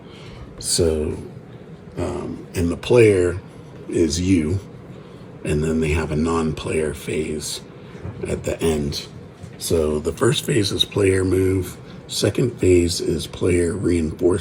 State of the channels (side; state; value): both; identical; correlation 1.00